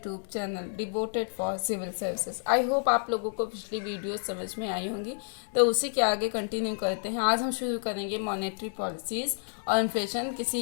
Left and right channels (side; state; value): right; silent; digital silence